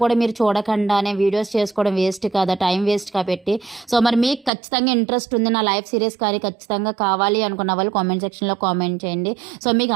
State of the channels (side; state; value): left; drops out; at 4.5 s